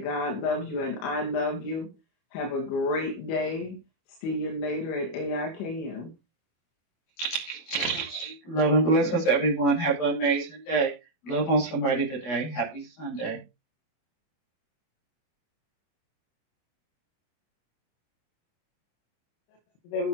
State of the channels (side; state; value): right; late; 25 ms